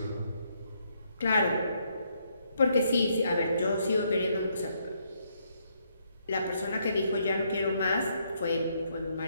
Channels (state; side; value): inverted; both; correlation -0.73